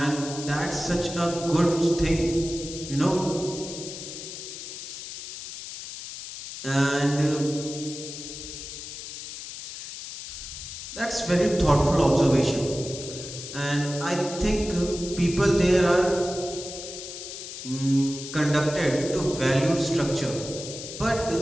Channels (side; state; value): left; noise; hiss, 10 dB below the sound